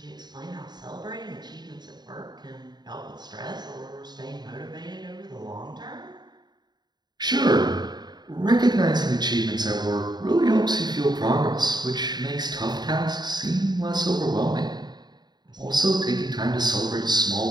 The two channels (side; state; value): left; late; 0.20 ms